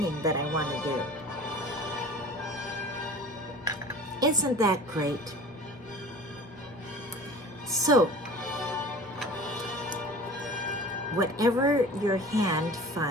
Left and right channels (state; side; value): normal; both; correlation 0.40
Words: that I want to do. Isn't that great? So, whatever your hand